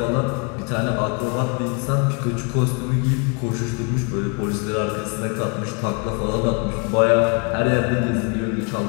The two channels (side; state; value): right; quieter; 34.4 dB